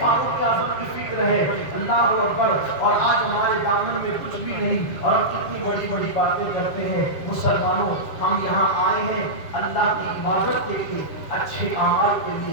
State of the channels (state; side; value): late; right; 7.0 ms